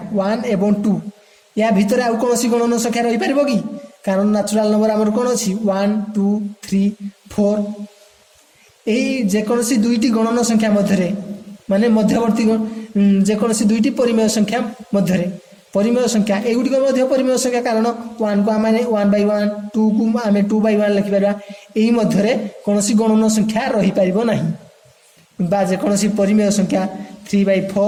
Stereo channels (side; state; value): both; identical; correlation 1.00